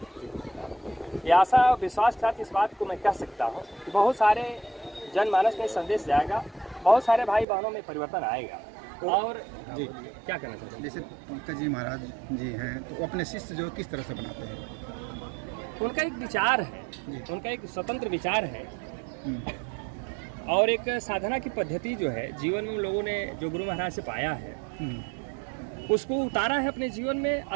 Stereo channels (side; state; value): left; drops out; at 7.5 s